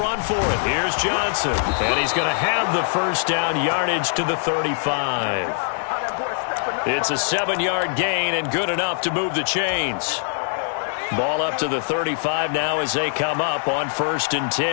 for it. Here's Johnson. And he's going to have the 1st down, yardage to the 35. It's a 7-yard gain and good enough to move the chains. Ball up to the 35 now as they come up on 1st and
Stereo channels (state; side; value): silent; right; digital silence